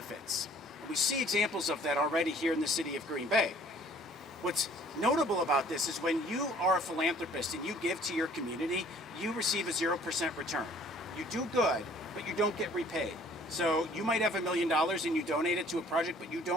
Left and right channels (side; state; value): both; normal; correlation 0.55